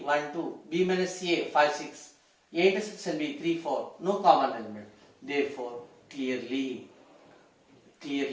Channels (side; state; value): both; identical; correlation 1.00